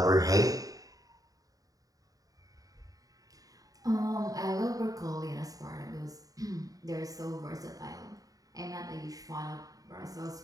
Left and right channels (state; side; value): late; left; 0.17 ms